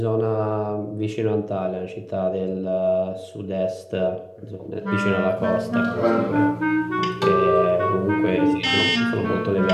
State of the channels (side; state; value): both; identical; correlation 1.00